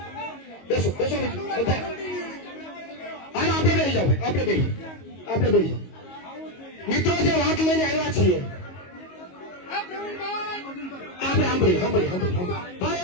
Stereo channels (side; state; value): right; late; 22 ms